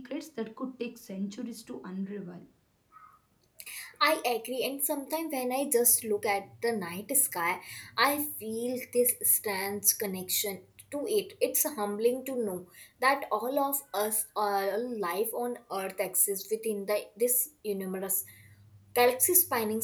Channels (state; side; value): identical; both; correlation 1.00